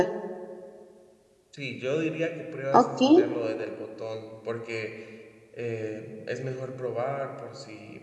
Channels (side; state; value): both; identical; correlation 1.00